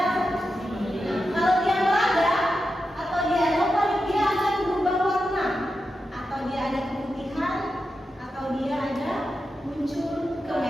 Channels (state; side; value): normal; both; correlation 0.89